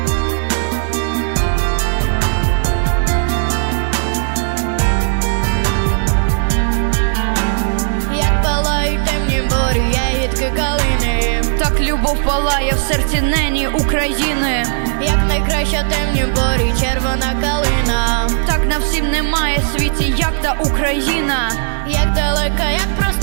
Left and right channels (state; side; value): silent; left; digital silence